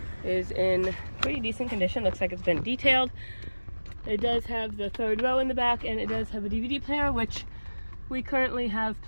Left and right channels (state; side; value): inverted; both; correlation -1.00